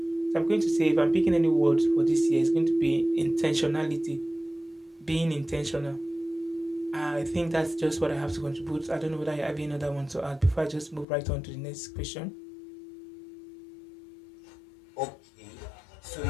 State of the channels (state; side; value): drops out; right; at 11.1 s